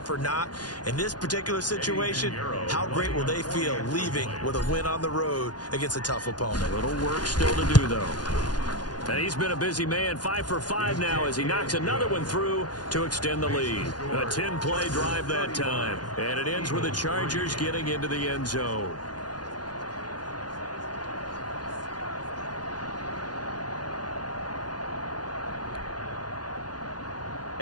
or not. In this particular situation, how great will they feel leaving with a win on the road against a tough opponent? A little work still to do, though. And he's been a busy man, 5 for 5 now as he knocks another one through to extend the lead. A 10-play drive that time. And it ends with the Chargers getting into the end zone.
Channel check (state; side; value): late; right; 0.69 ms